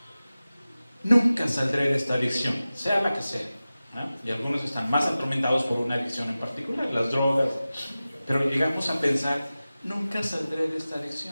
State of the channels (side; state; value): both; inverted; correlation -0.96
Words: Nunca saldré de esta adicción, sea la que sea, ¿eh? Y algunos están más atormentados por una adicción en particular, las drogas, pero llegamos a pensar: nunca saldré de esta